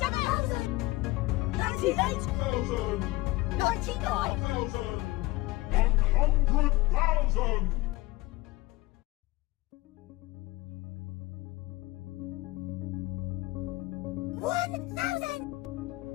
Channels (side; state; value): right; quieter; 19.6 dB